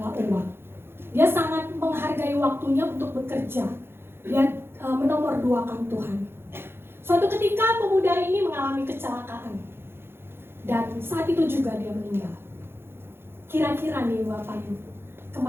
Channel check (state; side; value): late; left; 0.11 ms